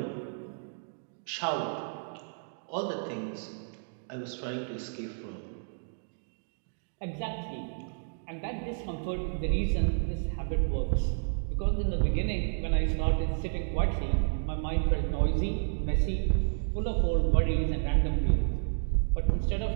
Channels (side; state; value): left; silent; digital silence